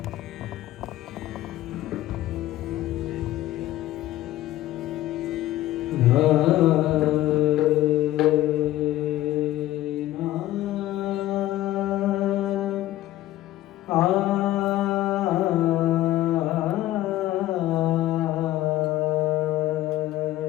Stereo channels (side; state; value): right; quieter; 14.8 dB